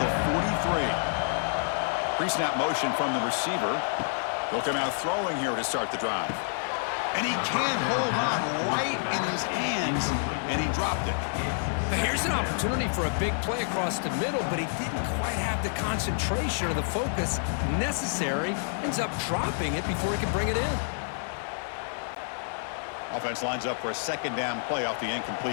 43. Pre-snap motion from the receiver. They'll come out throwing here to start the drive. And he can't hold on right in his hands, and he dropped it. But here's an opportunity for a big play across the middle, but he didn't quite have the concentration or the focus necessary. Ends up dropping it before he can bring it in. Offense lines up for a second down play off the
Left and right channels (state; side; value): silent; right; digital silence